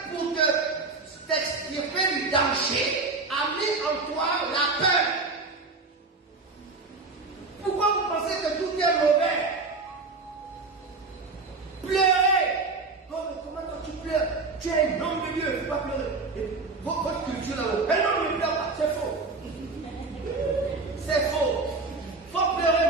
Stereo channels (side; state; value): left; quieter; 3.8 dB